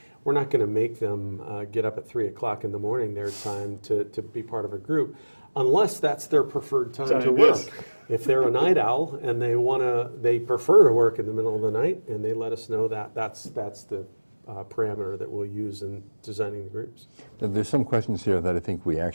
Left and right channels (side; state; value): both; inverted; correlation -1.00